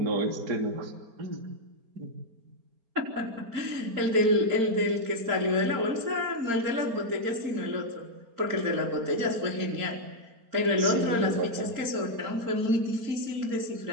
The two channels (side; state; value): left; late; 4.4 ms